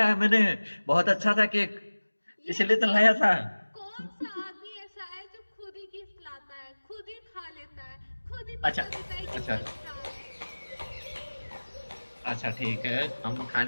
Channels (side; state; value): both; inverted; correlation -1.00